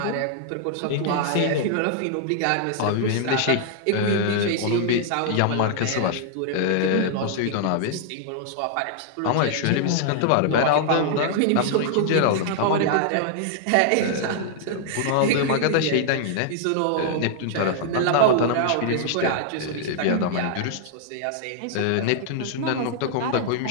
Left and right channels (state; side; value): different; both; correlation -0.01